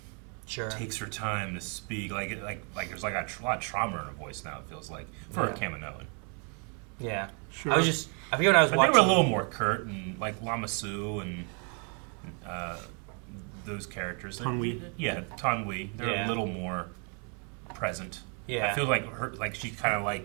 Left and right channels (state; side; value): quieter; left; 37.6 dB